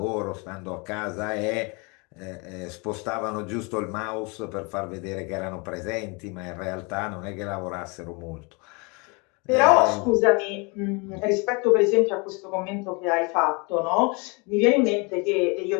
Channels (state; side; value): quieter; right; 30.1 dB